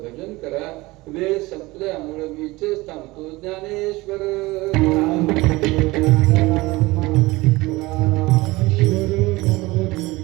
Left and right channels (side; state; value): left; quieter; 21.1 dB